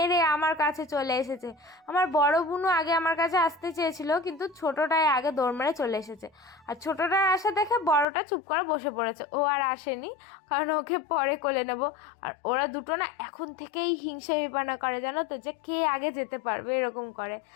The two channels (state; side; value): drops out; right; at 8.1 s